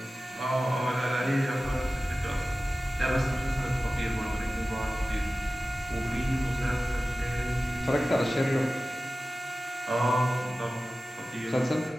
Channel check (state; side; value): normal; both; correlation 0.95